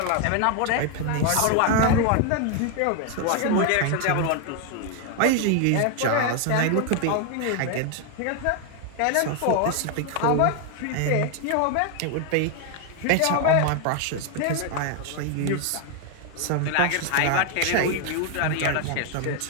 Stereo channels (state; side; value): different; both; correlation 0.01